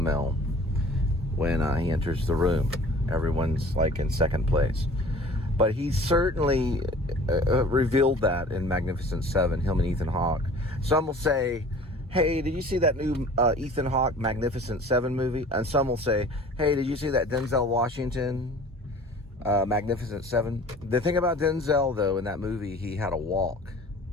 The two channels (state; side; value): normal; both; correlation 0.47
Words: when he enters the room. Everyone's like in second place. But he certainly revealed that in Magnificent 7, him and Ethan Hawke. Some will say, hey, did you see that new Ethan Hawke Magnificent 7 movie? And some will say, hey, did you see that Denzel Washington Magnificent 7? The thing about Denzel, though, in that movie, he had a walk.